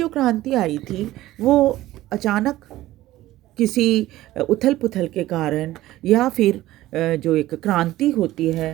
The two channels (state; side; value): quieter; left; 15.8 dB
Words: क्रांति आई थी वो अचानक किसी उथल पुथल के कारण या फिर जो एक क्रांति होती